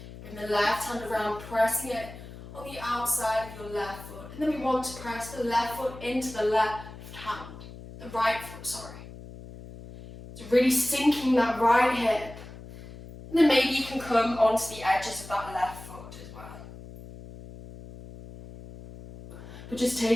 Bring the left hand around, pressing it on the outside of your left foot. And then we want to press the left foot into the left hand, the right foot, sorry. So really sinking that right hip. And then maybe you can come onto the edges of that left foot as well. But just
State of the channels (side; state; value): left; noise; hum, 15 dB below the sound